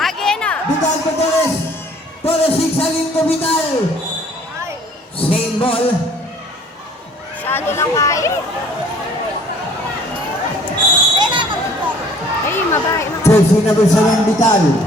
na! Vital ko Torres. Torres sigsagin ko Vital. Ay, Same ball. masyado lang kaya. Ay, mabay. Jersey number 7 Vital.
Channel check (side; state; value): both; normal; correlation 0.54